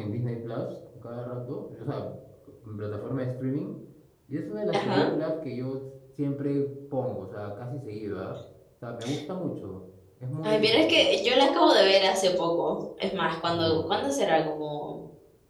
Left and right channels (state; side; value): identical; both; correlation 1.00